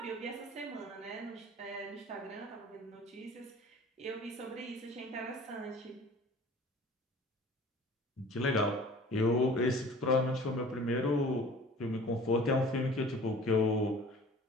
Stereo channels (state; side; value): normal; both; correlation 0.46